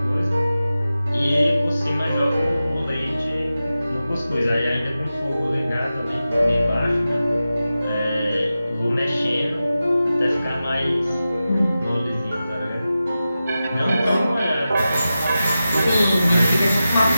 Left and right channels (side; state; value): both; inverted; correlation -0.93